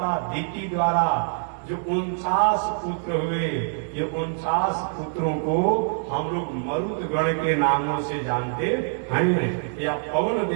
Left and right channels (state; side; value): silent; left; 62 dB below the other